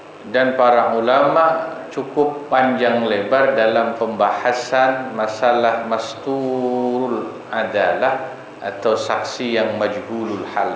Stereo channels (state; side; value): identical; both; correlation 1.00